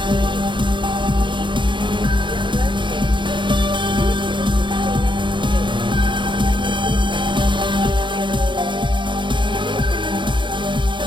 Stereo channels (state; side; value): late; left; 0.23 ms